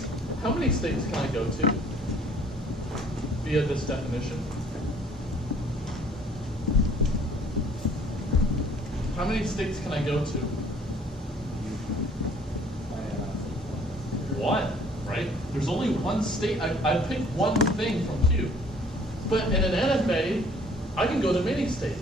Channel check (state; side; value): normal; both; correlation 0.57